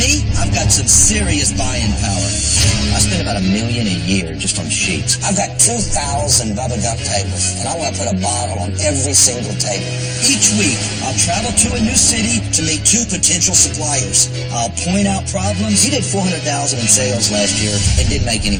I've got some serious buying power. I spend about $1 million a year just on sheets. I've got 2,000 Bubba Gump tables, and I want to put a bottle on every single table. Each week, I'll travel to a new city to meet 2 potential suppliers. I'll point out problems. You did $400,000 in sales last year and didn't make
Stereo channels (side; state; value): both; identical; correlation 1.00